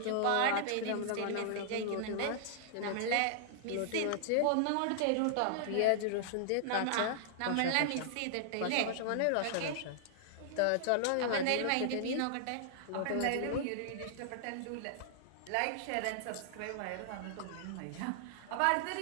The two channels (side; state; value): both; different; correlation -0.01